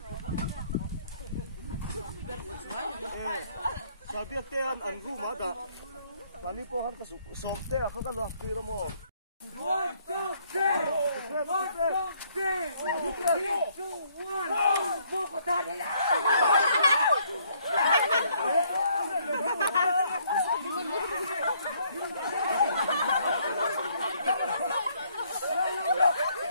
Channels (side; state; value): both; inverted; correlation -0.67